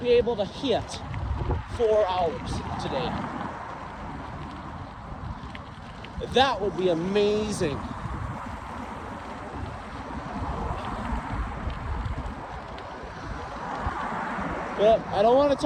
able to hit 4 hours today. That would be amazing. But I don't want to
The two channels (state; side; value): identical; both; correlation 1.00